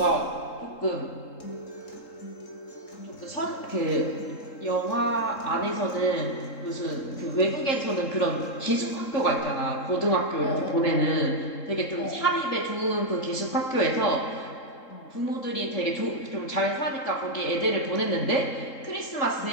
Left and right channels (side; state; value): right; late; 3.7 ms